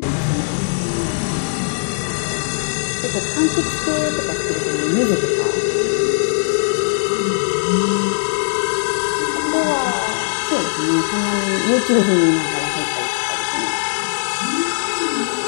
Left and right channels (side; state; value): right; silent; digital silence